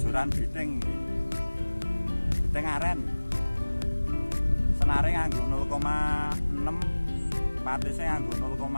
biting iki. Biting aren. Senare nganggo 0,6, patise nganggo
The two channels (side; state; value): both; inverted; correlation -1.00